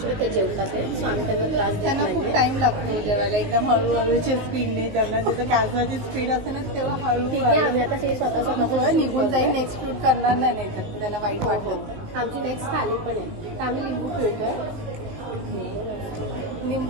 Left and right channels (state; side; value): late; left; 19 ms